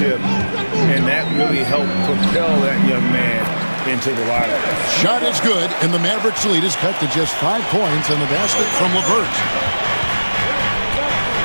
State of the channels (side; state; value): both; inverted; correlation -1.00